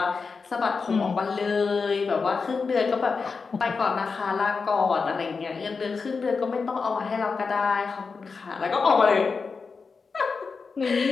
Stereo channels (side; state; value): right; quieter; 4.9 dB